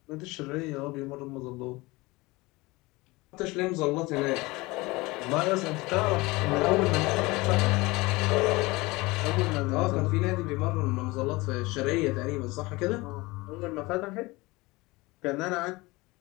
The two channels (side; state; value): right; quieter; 22.5 dB